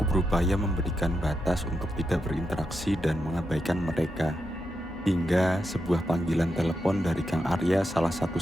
berupaya memberikan batas untuk tidak berinteraksi dan mengabaikan mereka. Hingga sebuah panggilan telepon dari Kang Arya, salah satu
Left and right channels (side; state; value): both; normal; correlation 0.86